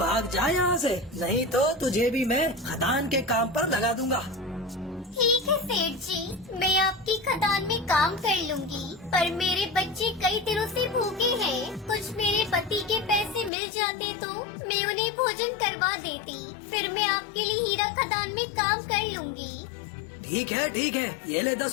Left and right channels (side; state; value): right; drops out; at 13.5 s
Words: जा यहाँ से, नहीं तो तुझे भी मैं खदान के काम पर लगा दूंगा। ठीक है सेठ जी, मैं आपकी खदान में काम कर लूंगी, पर मेरे बच्चे कई दिनों से भूखे हैं। कुछ मेरे पति के पैसे मिल जाते तो मैं उन्हें भोजन करवा देती। फिर मैं आपके लिए हीरा खदान में काम कर लूंगी। ठीक है, ये ले